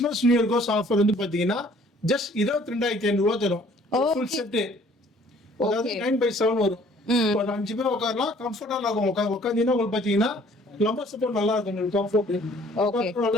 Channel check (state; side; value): normal; both; correlation 0.57